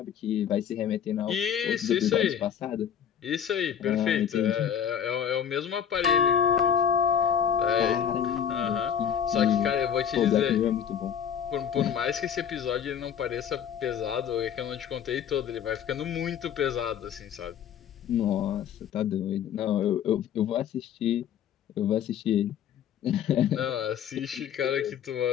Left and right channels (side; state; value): right; quieter; 8.6 dB